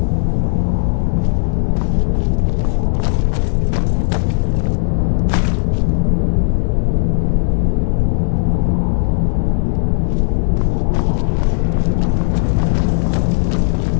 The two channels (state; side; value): silent; right; 69 dB below the other